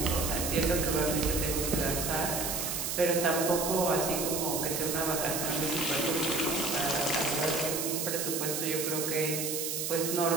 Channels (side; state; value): right; noise; hiss, 2 dB below the sound